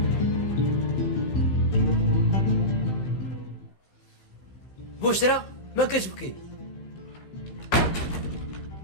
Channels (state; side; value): late; right; 15 ms